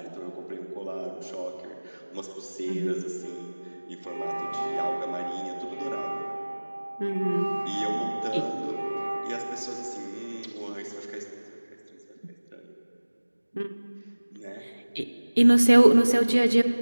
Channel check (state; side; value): inverted; both; correlation -1.00